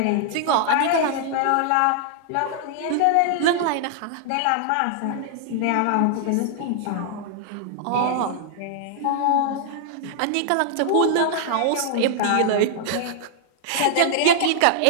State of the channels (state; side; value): different; both; correlation -0.01